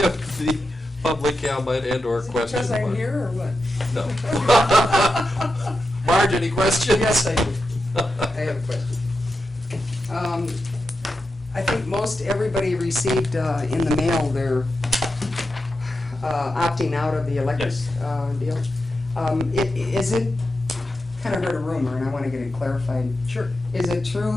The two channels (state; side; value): normal; both; correlation 0.89